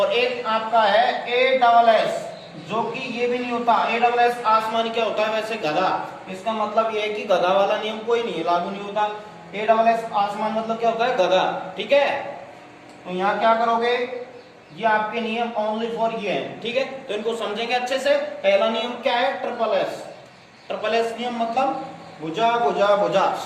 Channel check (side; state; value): both; identical; correlation 1.00